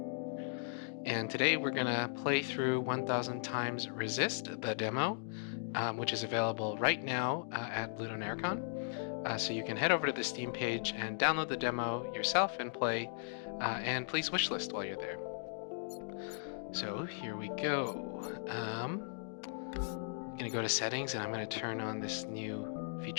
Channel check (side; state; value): right; silent; digital silence